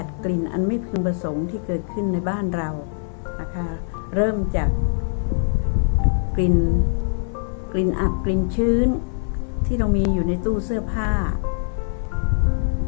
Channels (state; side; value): silent; right; digital silence